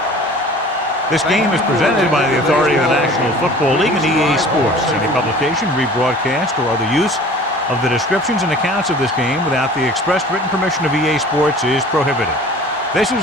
This game is presented by the authority of the National Football League and EA Sports. Any publication, rebroadcast, or other use of the descriptions and accounts of this game without the expressed written permission of EA Sports is prohibited. This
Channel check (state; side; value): normal; both; correlation 0.45